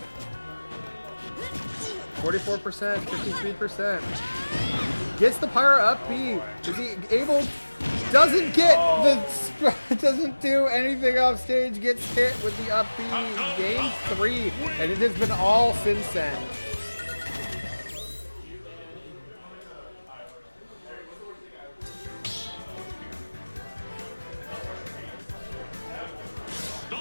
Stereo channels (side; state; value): both; inverted; correlation -1.00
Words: 44%, 53%. Gets the Pyro up B. Is he able? Doesn't get the, doesn't do anything off stage. Gets hit with the up B. Game 3, and it has been all Syncend.